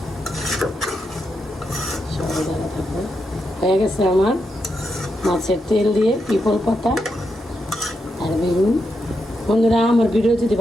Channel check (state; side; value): normal; both; correlation 0.84